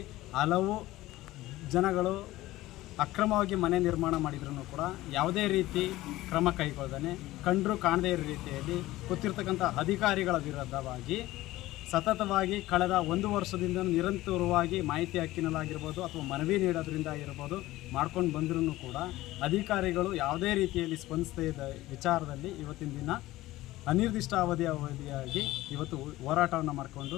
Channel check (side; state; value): right; quieter; 17.1 dB